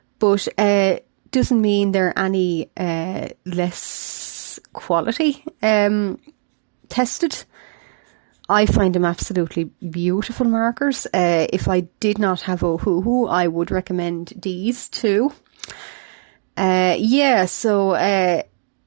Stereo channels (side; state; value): left; silent; 59 dB below the other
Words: but doesn't mean they're any less quality tested. I find them absolutely beautiful markers. If I did not have Ohuhu, I would recommend these too. And